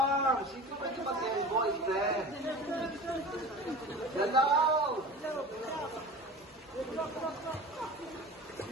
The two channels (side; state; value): both; normal; correlation 0.36